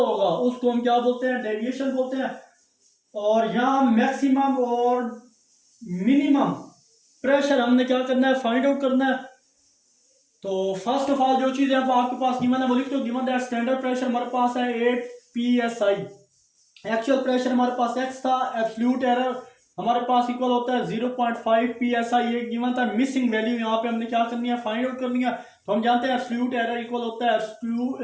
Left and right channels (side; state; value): both; identical; correlation 1.00